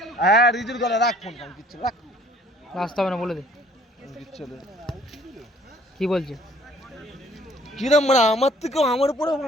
হ্যাঁ রিজুর গলা রাখ, ফোন কাম কিচ্ছু রাখ, আসতে হবে না, বলে দে কিচ্ছু দে। কি বলছে। কিরম মারা, আমার থেকেও আমার উপরে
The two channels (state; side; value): normal; both; correlation 0.57